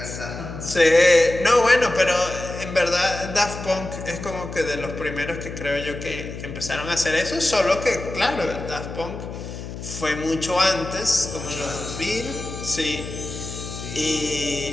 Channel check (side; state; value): left; noise; hum, 9 dB below the sound